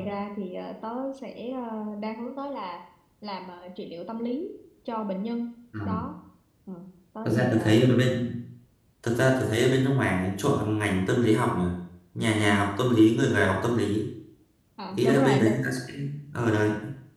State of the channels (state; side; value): identical; both; correlation 1.00